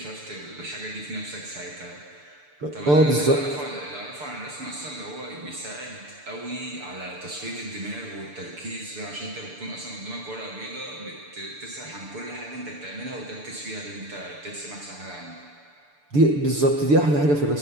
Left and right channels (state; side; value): late; left; 6.8 ms